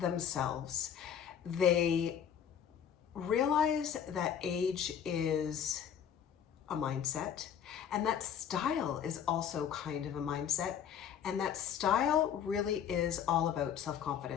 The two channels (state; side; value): quieter; right; 8.6 dB